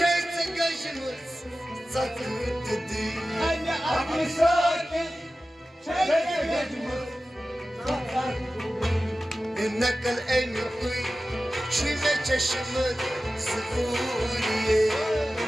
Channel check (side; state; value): both; normal; correlation 0.95